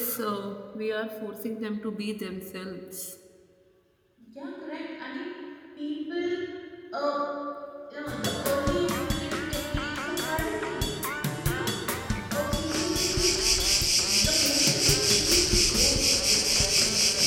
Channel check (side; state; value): both; identical; correlation 1.00